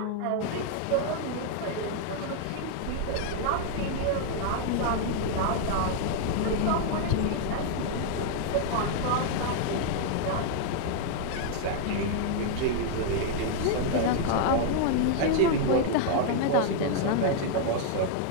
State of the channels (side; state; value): both; different; correlation 0.00